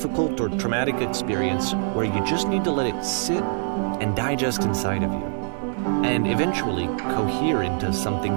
or traumatic experience where you just need to let it sit and digest inside of you, and eventually cohere into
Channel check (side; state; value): left; silent; digital silence